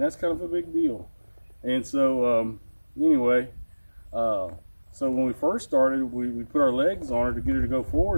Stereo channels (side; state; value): both; inverted; correlation -1.00